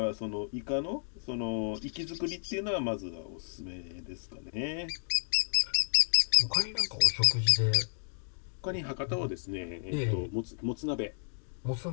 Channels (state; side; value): silent; right; digital silence